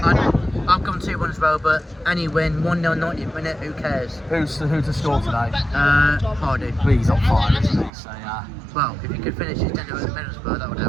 I've gone 2-1 as well, but any win, 1-0 90th minute, who cares? Who to score today? Hardy. He's on fire, isn't he? So yeah. Well, if he could finish his tenure at Middlesbrough, that would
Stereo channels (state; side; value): drops out; left; at 7.9 s